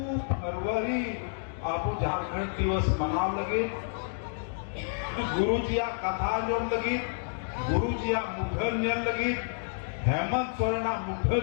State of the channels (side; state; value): right; silent; digital silence